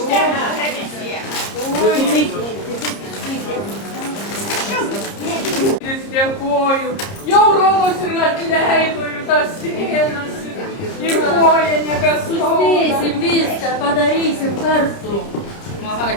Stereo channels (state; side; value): late; right; 30 ms